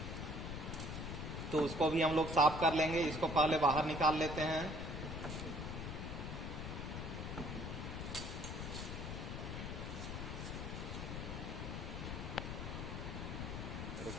तो उसको भी हम लोग साफ कर लेंगे। इसको पहले बाहर निकाल लेते हैं।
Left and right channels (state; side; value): noise; left; rumble, 5 dB below the sound